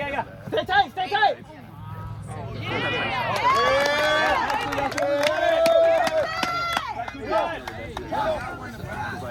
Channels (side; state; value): both; identical; correlation 1.00